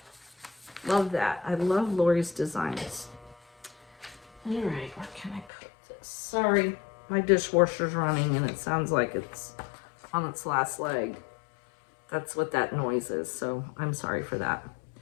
Love that. I love Lori's designs. All right, where can I put this? Sorry, my dishwasher's running and it sounds like it's on its last leg. That's what that noise is, so I'm sorry for that.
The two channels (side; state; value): right; drops out; at 5.5 s